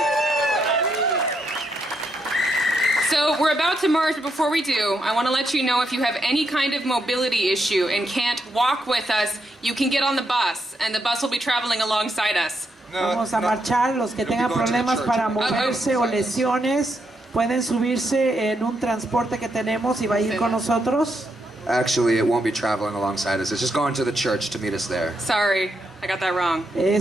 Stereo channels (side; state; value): both; normal; correlation 0.80